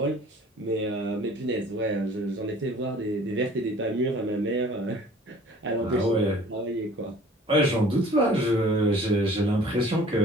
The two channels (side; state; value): both; normal; correlation 0.49